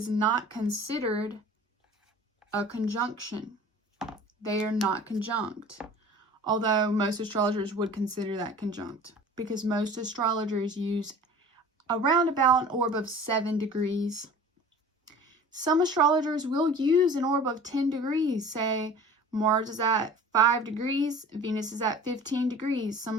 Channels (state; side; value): normal; both; correlation 0.43